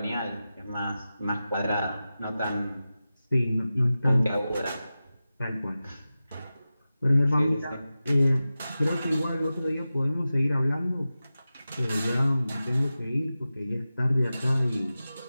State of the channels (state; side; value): inverted; both; correlation -0.94